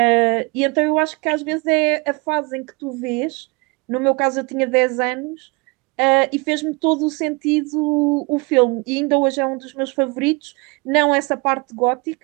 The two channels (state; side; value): quieter; left; 28.6 dB